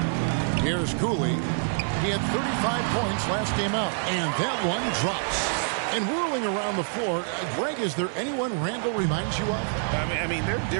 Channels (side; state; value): left; silent; 61 dB below the other